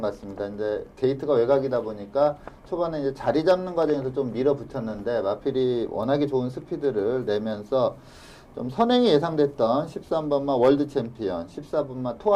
것 같습니다. 이제 게이트가 외곽이다 보니까 초반에 이제 자리 잡는 과정에서 좀 밀어붙였는데 마필이 워낙에 좋은 스피드를 내면서 좀 선행이 예상됐던 13번마 월드 챔피언, 14번마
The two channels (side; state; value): both; identical; correlation 1.00